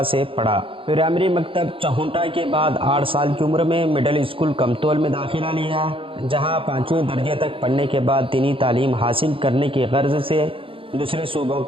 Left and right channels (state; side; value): late; left; 0.26 ms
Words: سے پڑھا۔ پرائمری مکتب چہونٹا کے بعد 8 سال کی عمر میں مڈل اسکول کمتول میں داخلہ لیا، جہاں 5ویں درجے تک پڑھنے کے بعد دینی تعلیم حاصل کرنے کی غرض سے دوسرے صوبوں